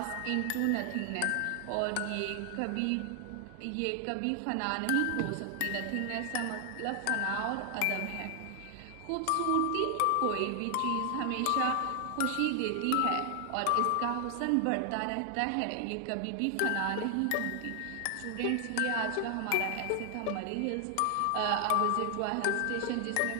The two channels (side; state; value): both; different; correlation 0.00